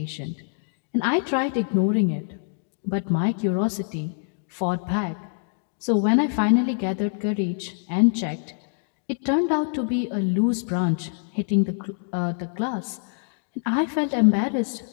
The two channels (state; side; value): silent; right; digital silence